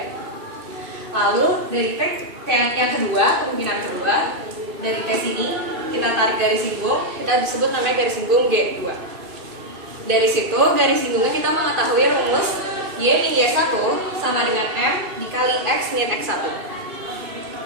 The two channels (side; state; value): left; late; 2.6 ms